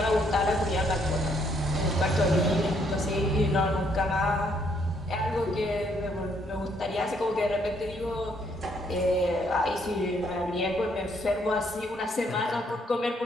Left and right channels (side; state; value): both; normal; correlation 0.70